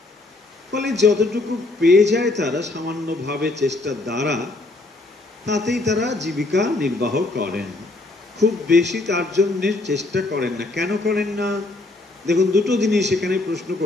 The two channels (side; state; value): right; quieter; 3.0 dB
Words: ফলে যতটুকু পেয়ে যায় তারা সামান্যভাবে চেষ্টার দ্বারা, তাতেই তারা জীবিকা নির্বাহ করেন। খুব বেশি তার জন্য চেষ্টা করেন না। কেন করেন না? দেখুন, দুটো জিনিস এখানে প্রশ্ন